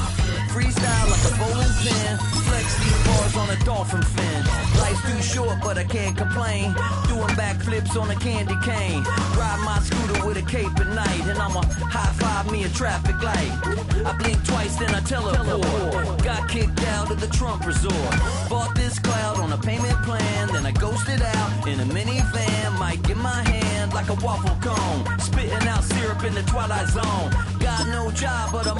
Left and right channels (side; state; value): both; identical; correlation 1.00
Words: Freestyle like a bowling pin. Flex these bars on a dolphin fin. Life's too short, but I can't complain. Doing backflips on a candy cane. Ride my scooter with a cape at night. And I'ma high five me a traffic light. I blink twice, then I teleport. Got got kicked out of the Trump resort. Bought this cloud on a payment plan, then I ghosted out in a minivan. Mic in my hand like a waffle cone, spitting out syrup in the twilight zone. Got no job, but